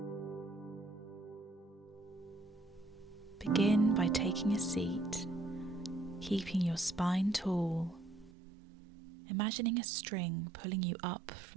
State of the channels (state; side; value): drops out; left; at 8.3 s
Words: Begin by taking a seat, keeping your spine tall, imagining a string pulling you up